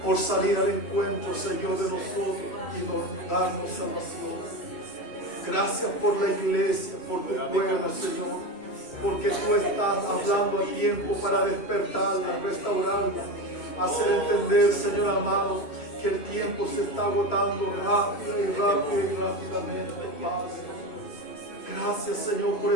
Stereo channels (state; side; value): late; right; 3.1 ms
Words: por salir al encuentro, Señor, de nosotros y darnos salvación. Gracias por la iglesia, por tu pueblo, Señor, porque tú estás hablando a tiempo para despertarla, restaurarla, hacer entender, Señor amado, que el tiempo se está agotando rápido y rápidamente, Padre. Gracias, Señor, por